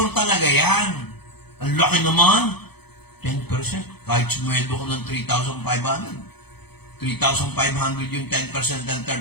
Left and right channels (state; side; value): late; right; 0.98 ms